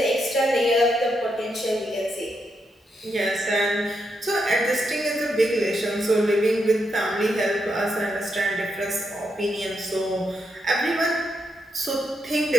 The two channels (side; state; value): both; normal; correlation 0.81